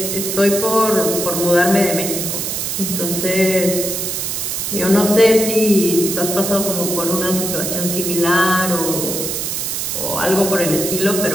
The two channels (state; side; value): noise; right; hiss, 2 dB below the sound